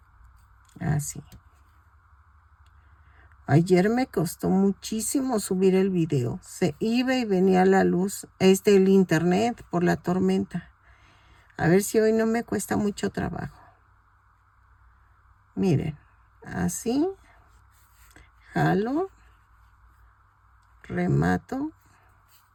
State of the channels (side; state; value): both; identical; correlation 1.00